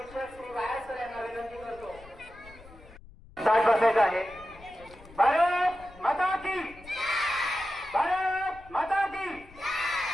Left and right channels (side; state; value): left; noise; rumble, 21 dB below the sound